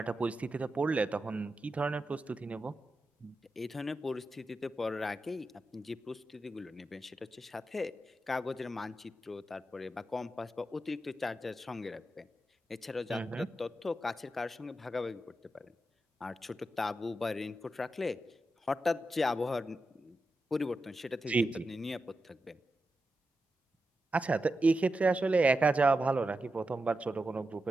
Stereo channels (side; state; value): both; normal; correlation 0.89